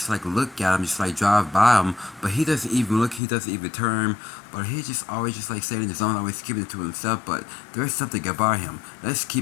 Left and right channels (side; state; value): right; drops out; at 3.2 s